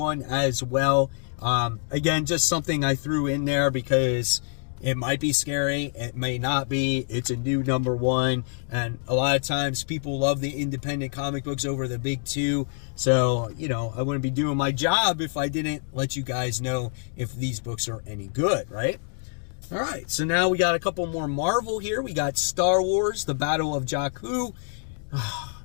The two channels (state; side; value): silent; right; digital silence